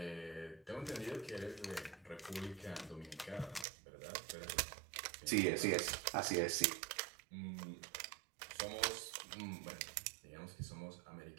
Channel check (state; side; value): drops out; left; at 3.7 s